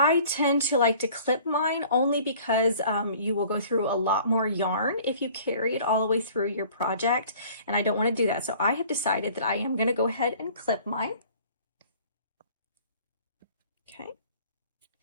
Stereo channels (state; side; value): inverted; both; correlation -0.51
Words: tend to like to clip mine only because you will go through a lot more yarn if you carry it all the way through your project, and I don't want to do that. So I have decided that I am going to go ahead and clip mine. Okay.